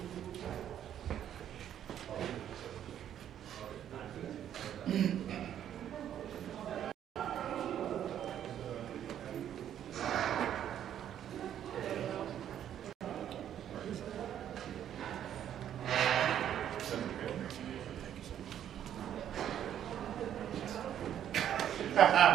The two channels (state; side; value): quieter; left; 10.2 dB